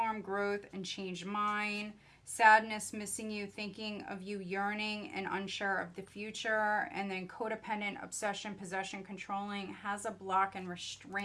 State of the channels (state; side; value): identical; both; correlation 1.00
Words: growth, and change mind. Sadness, missing you, thinking of you, yearning, and unsure of the future. And then codependent, obsession, possession, controlling, has a block and